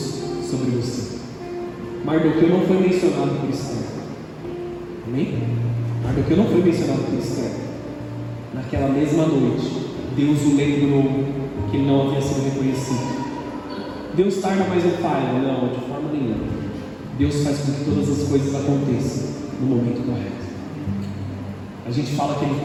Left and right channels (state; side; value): identical; both; correlation 1.00